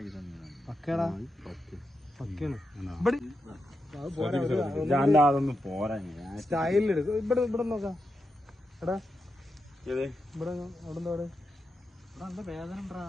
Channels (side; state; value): both; normal; correlation 0.87